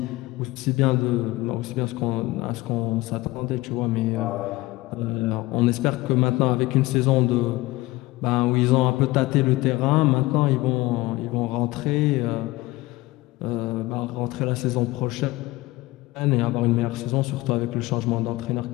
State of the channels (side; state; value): right; quieter; 19.8 dB